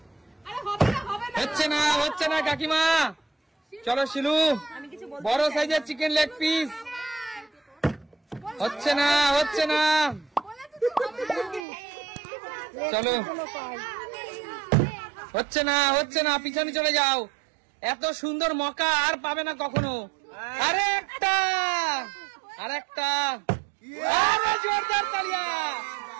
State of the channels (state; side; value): drops out; left; at 11.7 s